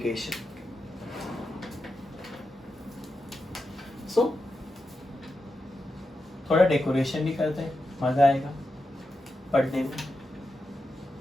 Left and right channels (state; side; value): normal; both; correlation 0.88